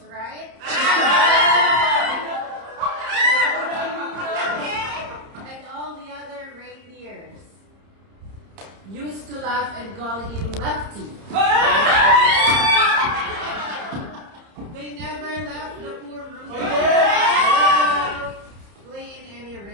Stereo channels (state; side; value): late; left; 30 ms